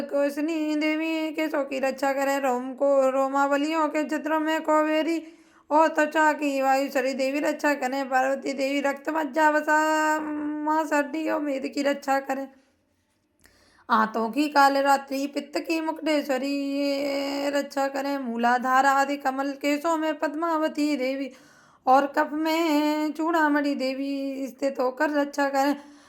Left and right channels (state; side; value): identical; both; correlation 1.00